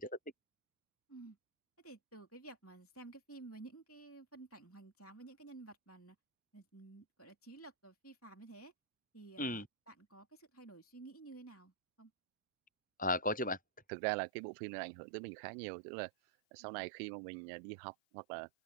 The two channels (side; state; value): left; drops out; at 13.8 s